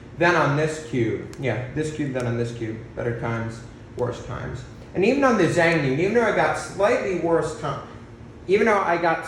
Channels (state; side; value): identical; both; correlation 1.00